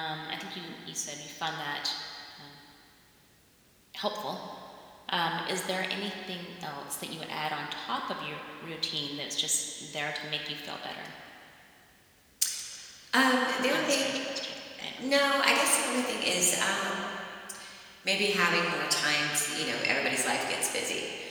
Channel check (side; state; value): both; identical; correlation 1.00